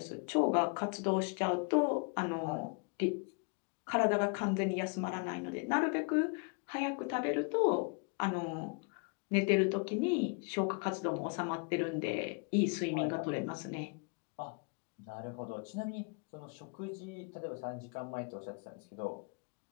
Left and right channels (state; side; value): quieter; right; 35.4 dB